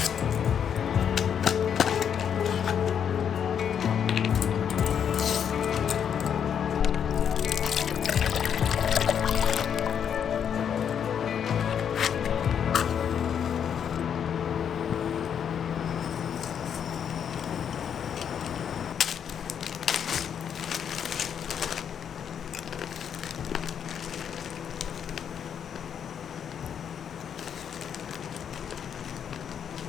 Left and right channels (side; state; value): right; quieter; 8.2 dB